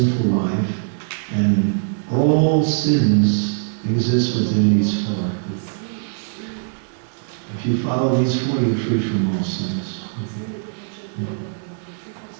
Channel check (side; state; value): left; silent; digital silence